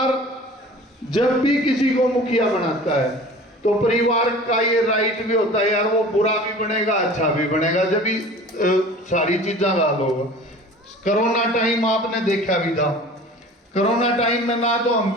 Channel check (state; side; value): normal; both; correlation 0.42